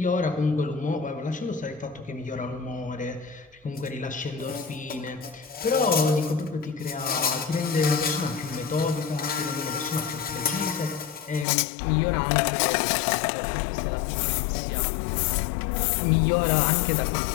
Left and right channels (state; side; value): drops out; right; at 11.5 s